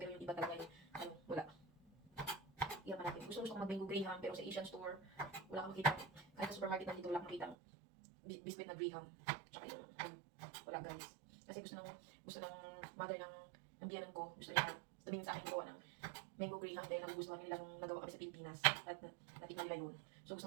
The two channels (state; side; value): drops out; left; at 7.6 s